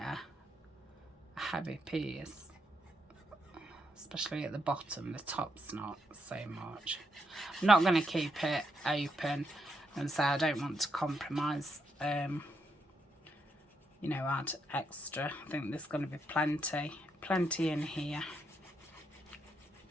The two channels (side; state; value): both; normal; correlation 0.79